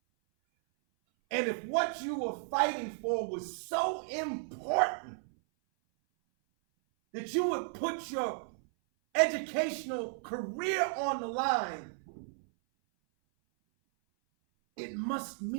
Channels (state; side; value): silent; left; 55 dB below the other